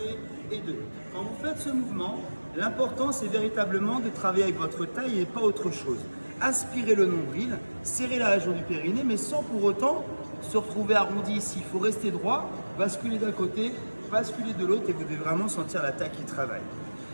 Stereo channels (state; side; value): inverted; both; correlation -1.00